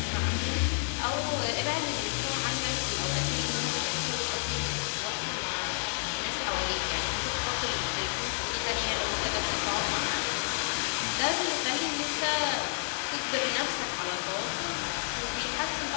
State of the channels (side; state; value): right; silent; 58 dB below the other